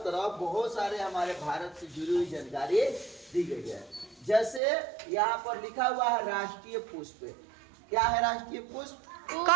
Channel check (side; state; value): left; drops out; at 4.6 s